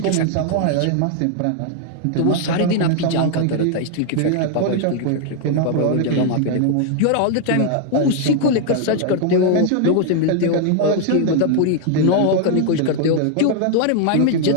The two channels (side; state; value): both; different; correlation 0.00